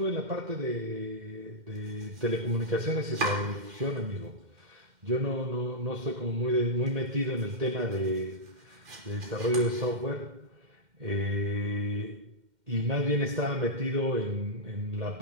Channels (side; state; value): left; late; 2.1 ms